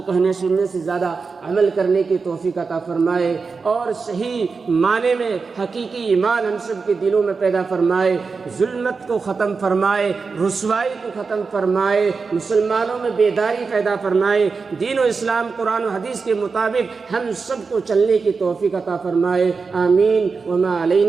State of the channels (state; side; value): quieter; left; 4.8 dB